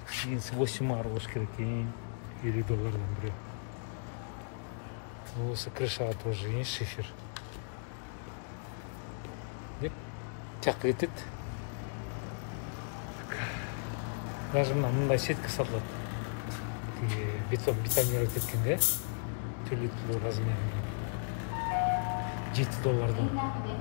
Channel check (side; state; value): right; silent; digital silence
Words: 8 ар болуш керек. 50 доллардан бирөө. Осы крышага тоже есть шифер. Деп тияққа кетет. Даже мындай сетка сатылат. Бетонировать еткен, да? Түрлі размерінен. 7 доллардан.